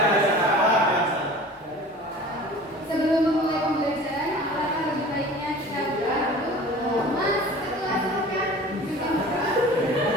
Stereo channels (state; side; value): normal; both; correlation 0.42